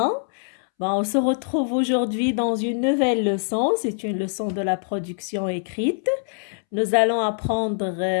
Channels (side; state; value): right; silent; 63 dB below the other